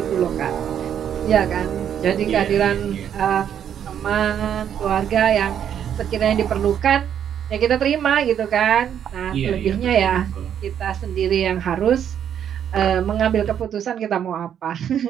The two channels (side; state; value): left; quieter; 9.2 dB